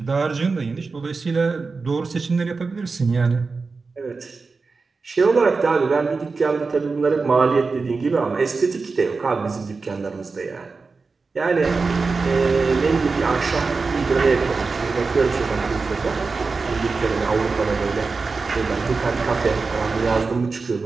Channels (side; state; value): left; quieter; 4.3 dB